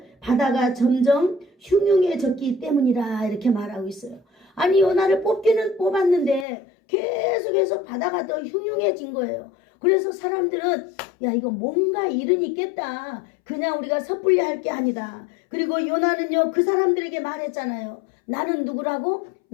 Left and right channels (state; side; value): drops out; right; at 6.5 s